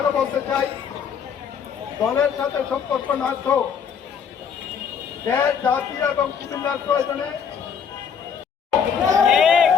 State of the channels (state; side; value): quieter; right; 7.1 dB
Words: বলতে চাই, দলের সাথে সম্পর্ক না তো দেশ জাতি এবং কুমিল্লার প্রয়োজনে